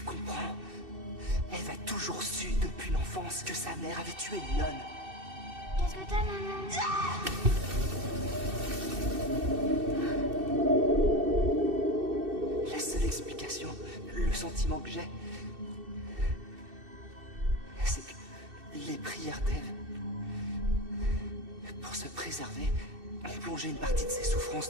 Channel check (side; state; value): left; late; 2.6 ms